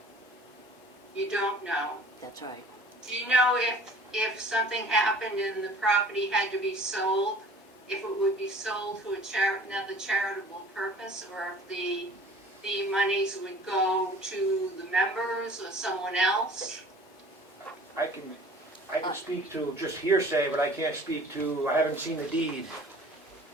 You don't know. That's right. Do you know if something happened and the property had to be sold, if it would be sold to another charitable purpose, or if the monies would go to the members or someone else? I can speak to just hearsay, but I can't speak to, I haven't seen the deed.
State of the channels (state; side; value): normal; both; correlation 0.48